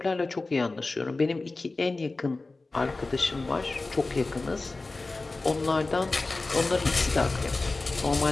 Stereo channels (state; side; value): quieter; right; 3.4 dB